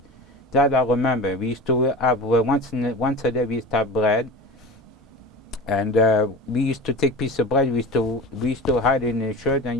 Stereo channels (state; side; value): normal; both; correlation 0.33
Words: That I remember. We used to have once a day. We used to have bread, and we used to take piece of bread. We used to hide it in the shirt and